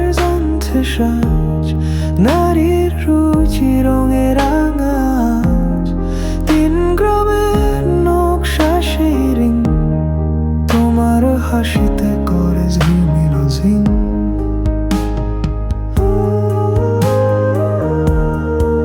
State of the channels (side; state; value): both; identical; correlation 1.00